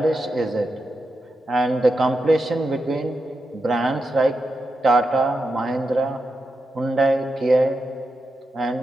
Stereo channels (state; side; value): normal; both; correlation 0.87